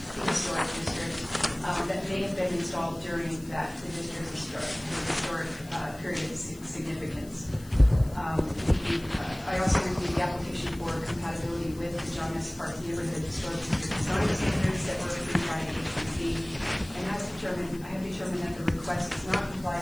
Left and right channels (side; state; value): left; noise; hiss, 21 dB below the sound